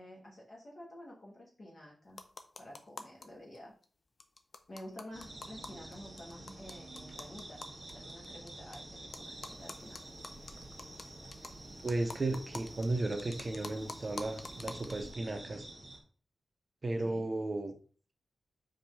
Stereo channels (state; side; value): normal; both; correlation 0.95